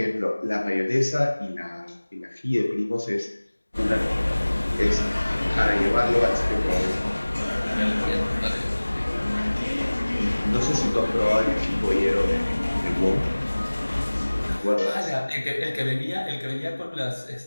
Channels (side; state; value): both; inverted; correlation -1.00